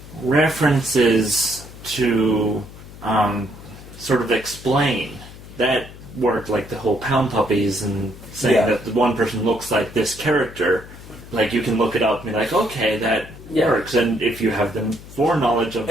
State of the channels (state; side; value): noise; left; hum, 17 dB below the sound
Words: references to sort of explain... That worked, like the whole Pound Puppies and saying that the one person looks like this character. Like, you can look it up and be like, okay, that works. And if you have the foreknowledge of